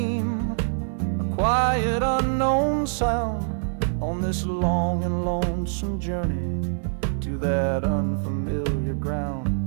a quiet unknown sound, on this long and lonesome journey to that unfamiliar ground.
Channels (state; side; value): silent; left; 62 dB below the other